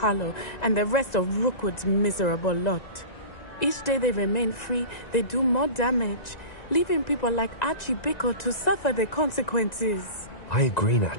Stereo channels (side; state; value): right; late; 1.9 ms